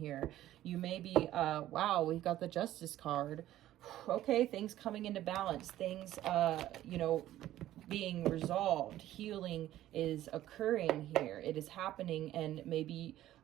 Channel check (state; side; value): quieter; left; 13.7 dB